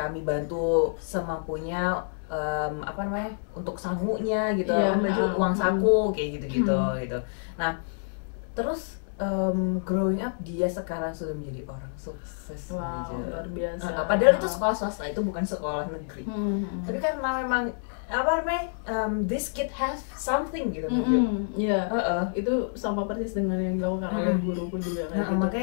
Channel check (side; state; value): right; silent; 60 dB below the other